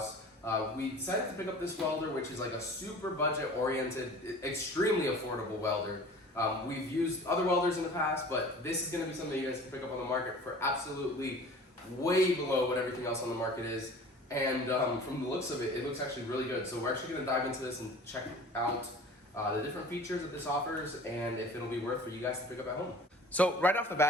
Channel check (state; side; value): normal; both; correlation 0.43